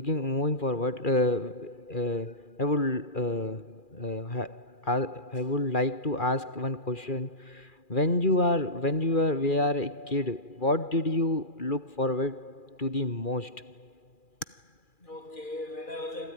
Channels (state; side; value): late; right; 2.4 ms